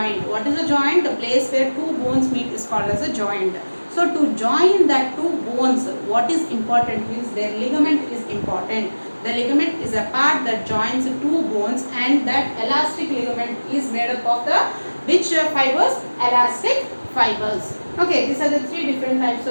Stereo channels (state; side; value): inverted; both; correlation -1.00